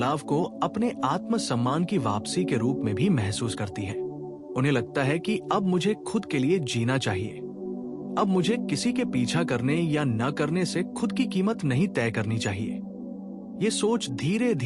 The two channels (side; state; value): both; identical; correlation 1.00